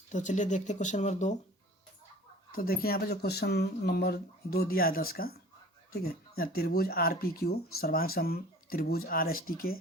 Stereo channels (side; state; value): both; normal; correlation 0.45